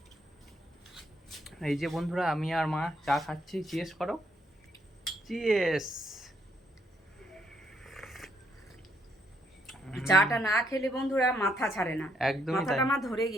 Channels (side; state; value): both; normal; correlation 0.73